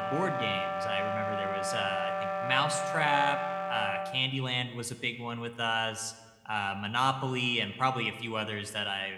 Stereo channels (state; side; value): identical; both; correlation 1.00